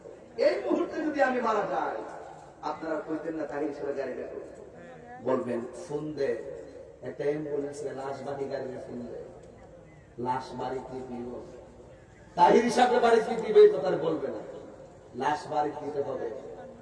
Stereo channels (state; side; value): identical; both; correlation 1.00